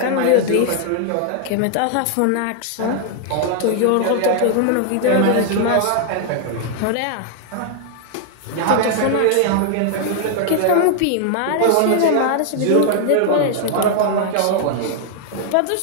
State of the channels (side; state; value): both; different; correlation 0.00